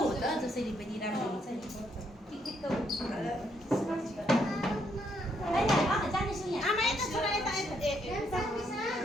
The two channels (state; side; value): normal; both; correlation 0.74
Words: त जसरी पनि राम्रो हुन्छ नि जाने सुन्ने आमा यता छोरा यता